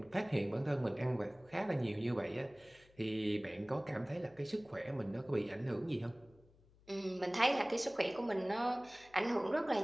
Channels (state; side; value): noise; left; hum, 28 dB below the sound